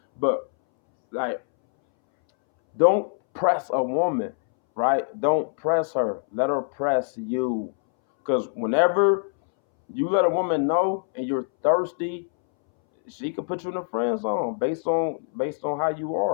But like, don't press a woman, right? Don't press her. Let her press you. Because whenever you let a woman know and you're thirsty, she could put you in a friend zone based on how you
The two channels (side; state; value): right; silent; 62 dB below the other